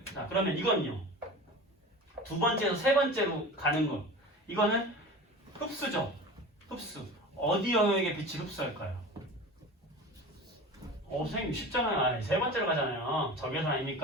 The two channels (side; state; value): both; normal; correlation 0.34